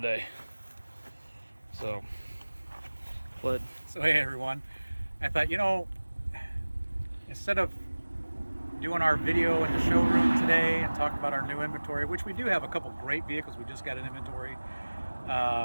So hey everyone, I thought, instead of doing our video in the showroom today and talk about our new inventory, which we do have a couple great vehicles, we just got an inventory. We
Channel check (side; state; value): both; inverted; correlation -1.00